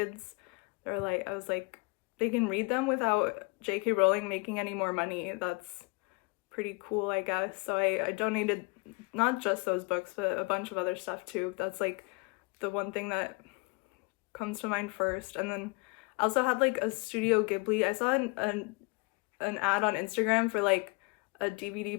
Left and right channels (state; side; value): quieter; right; 29.3 dB